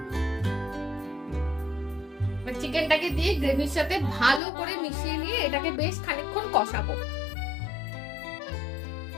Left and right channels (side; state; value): right; drops out; at 4.4 s